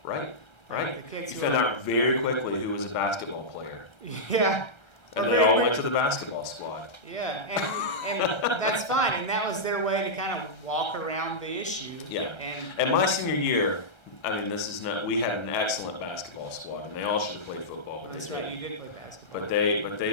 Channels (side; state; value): right; late; 1.3 ms